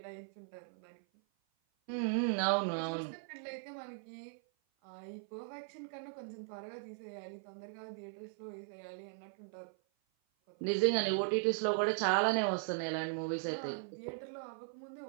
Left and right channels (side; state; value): left; silent; 52 dB below the other